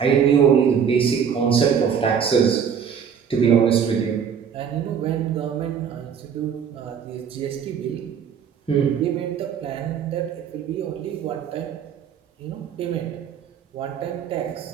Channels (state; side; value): quieter; left; 7.5 dB